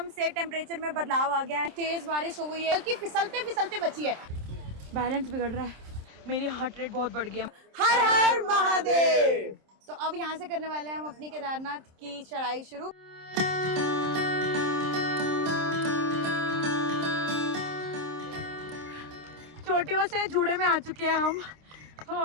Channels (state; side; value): late; left; 27 ms